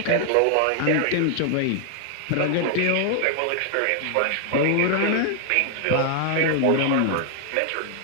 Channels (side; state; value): both; different; correlation 0.00